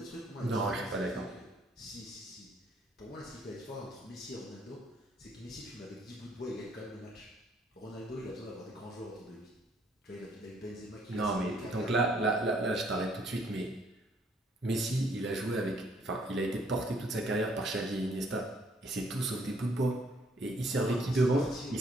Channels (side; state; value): both; normal; correlation 0.65